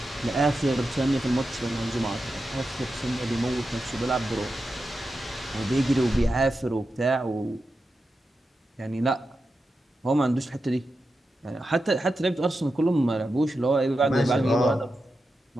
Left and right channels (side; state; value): both; normal; correlation 0.90